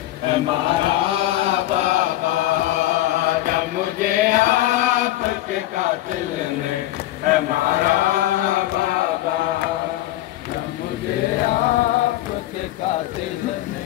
मारा बाबा, जब मुझे आपके कातिल ने मारा बाबा, जब मुझे आपके कातिल ने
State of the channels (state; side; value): quieter; right; 15.2 dB